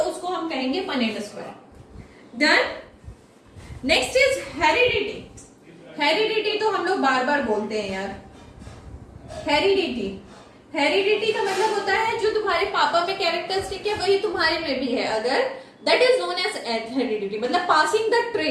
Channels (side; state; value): both; identical; correlation 1.00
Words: उसको हम कहेंगे Punnett square. Done. Next is heredity. Heredity तो हम लोग बार बार बोलते हैं यार, हेरिडिटी, हेरिडिटी का मतलब होता है जो तुम्हारे पापा में कैरेक्टरिस्टिक है वही तुम्हारे में भी है, अगर that is known as heredity, मतलब passing the